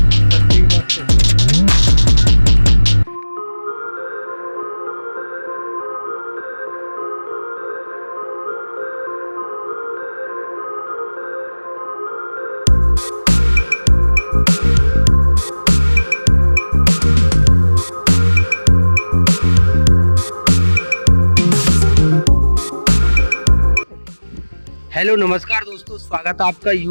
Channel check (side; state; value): both; inverted; correlation -1.00